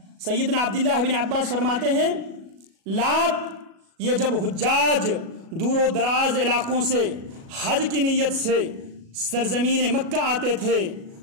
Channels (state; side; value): late; left; 37 ms